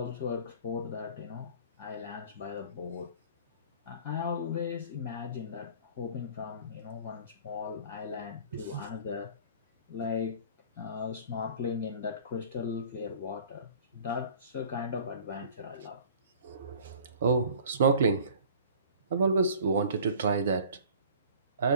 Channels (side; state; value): both; inverted; correlation -0.47